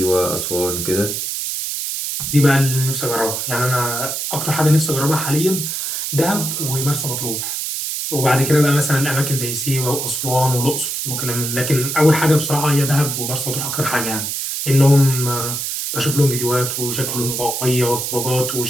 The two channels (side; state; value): right; noise; hiss, 3 dB below the sound